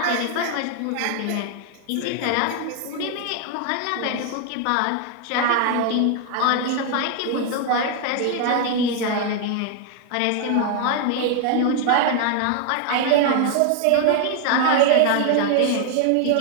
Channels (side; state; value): both; different; correlation 0.00